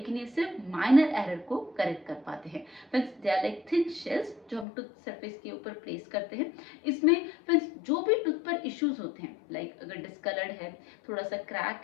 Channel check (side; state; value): right; drops out; at 4.7 s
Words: ये सिर्फ माइनर एरर को करेक्ट कर पाते हैं। Friends, they are like thin shells जो हम टूथ सरफेस के ऊपर प्लेस करते हैं। इसमें फ्रेंड्स जो भी टूथ पर इश्यूज होते हैं, लाइक अगर डिस्कलर्ड है, थोड़ा सा